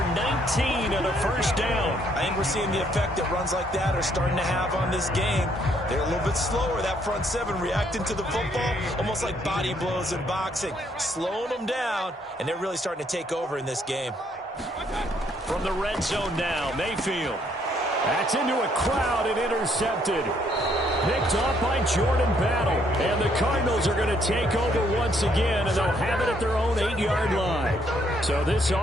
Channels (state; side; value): normal; both; correlation 0.69